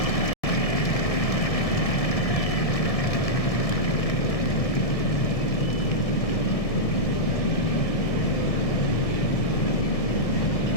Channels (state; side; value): late; right; 1.7 ms